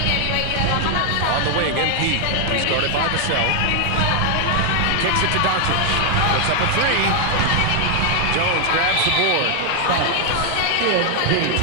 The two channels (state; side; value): different; both; correlation 0.00